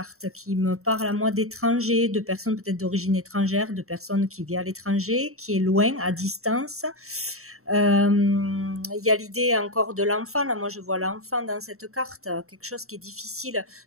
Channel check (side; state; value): left; late; 0.63 ms